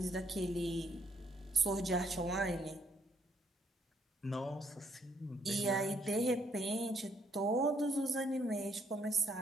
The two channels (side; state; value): both; normal; correlation 0.71